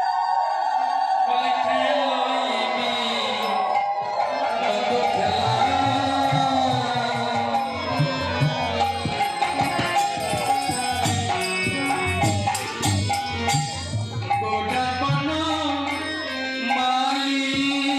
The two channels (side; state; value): both; identical; correlation 1.00